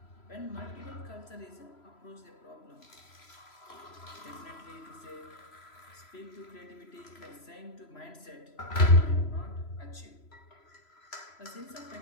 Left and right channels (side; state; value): right; late; 3.0 ms